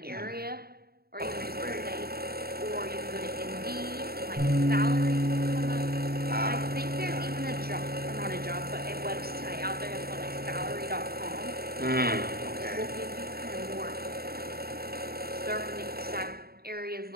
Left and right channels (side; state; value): left; late; 0.45 ms